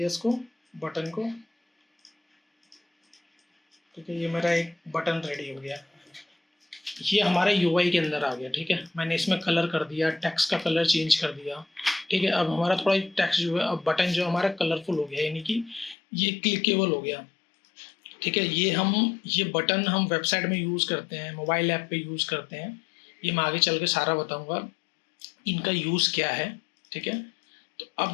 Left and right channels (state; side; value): drops out; right; at 16.0 s